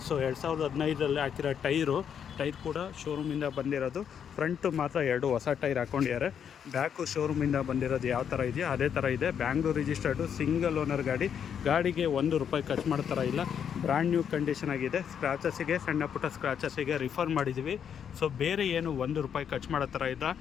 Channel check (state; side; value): quieter; right; 8.1 dB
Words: ಸೊ 2015ರಲ್ಲಿ ಹಾಕಿರೋ ಟೈರ್ ಕೂಡ ಶೋರೂಮಿಂದ ಬಂದಿರೋದು. ಫ್ರಂಟು ಮಾತ್ರ 2 ಹೊಸ ಟೈರ್ ಹಾಕ್ಕೊಂಡಿದ್ದಾರೆ. ಬ್ಯಾಕು ಶೋರೂಮಿಂದ ಬಂದಿರೋದು ಯಾವ ಥರ ಇದೆಯೋ ಅದೇ ಥರ ಇದೆ. ಬ್ಯಾಂಗ್ಳೂರ್ ರಿಜಿಸ್ಟರ್ಡು, ಸಿಂಗಲ್ ಓನರ್ ಗಾಡಿಗೆ ₹1 ಖರ್ಚು ಮಾಡೋ ಥರ ಇಲ್ಲ. ಬ್ರ್ಯಾಂಡ್ ನ್ಯೂ ಕಂಡೀಷನ್ ಆಗಿದೆ. ಸ್ಕ್ರಾಚಸ್ಸಿಗೆ, ಸಣ್ಣ ಪುಟ್ಟ ಸ್ಕ್ರಾಚಸ್ಸಿಗೆ ರಿಫರ್ ಮಾಡಿದ್ದೀವಿ. ಸೊ ಬೇರೆ ಏನು ₹1 ಖರ್ಚು ಮಾಡೋ ಥರ ಇಲ್ಲ.